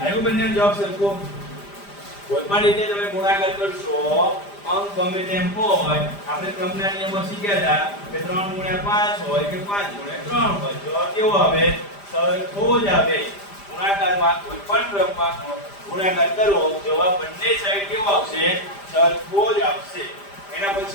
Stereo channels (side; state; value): right; late; 5.0 ms